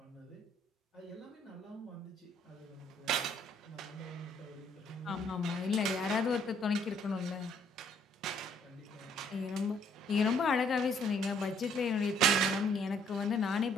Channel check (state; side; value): normal; both; correlation 0.65